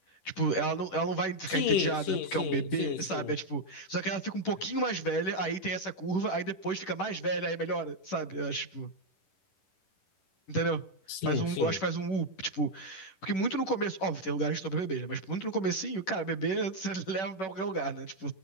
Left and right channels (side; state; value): right; late; 11 ms